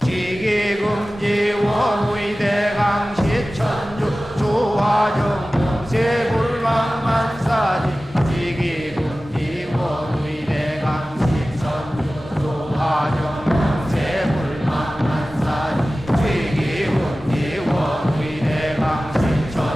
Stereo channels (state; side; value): normal; both; correlation 0.96